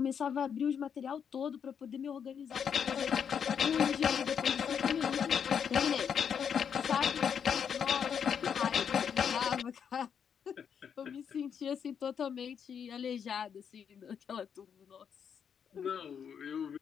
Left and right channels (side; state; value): right; quieter; 7.5 dB